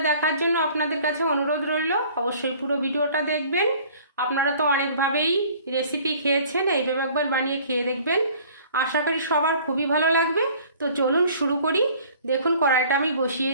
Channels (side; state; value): both; inverted; correlation -0.52